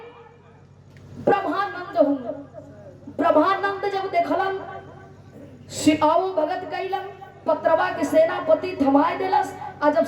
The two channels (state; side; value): identical; both; correlation 1.00